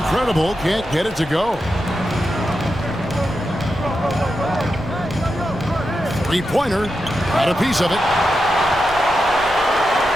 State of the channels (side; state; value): left; noise; rumble, 17 dB below the sound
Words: can't get it to go. 3-pointer. Got a piece of it.